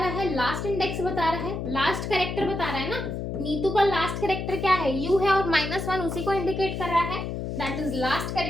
है, लास्ट इंडेक्स बता रहा है, लास्ट कैरेक्टर बता रहा है ना, नीतू का लास्ट कैरेक्टर क्या है, यू है, और -1 उसी को इंडिकेट कर रहा है, दैट इज लास्ट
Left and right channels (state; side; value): noise; left; hum, 4 dB below the sound